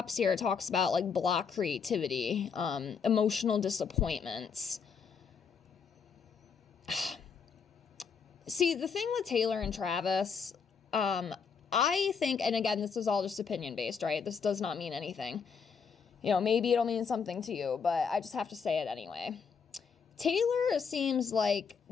here, it talks about like block creativity, emotional disappointments. See, the thing with Taylor and Travis, I think, and again, this is all just opinion based, right? This does not mean anything. You know, maybe it'll mean something to you, but I just have to say it anyway. Taylor seems like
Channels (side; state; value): right; quieter; 6.0 dB